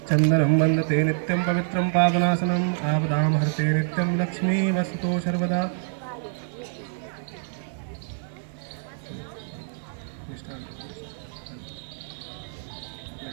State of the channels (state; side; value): silent; left; 61 dB below the other